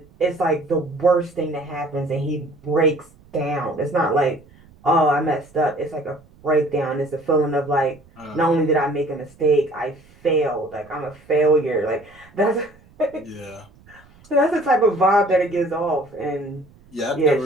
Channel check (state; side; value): noise; right; rumble, 27 dB below the sound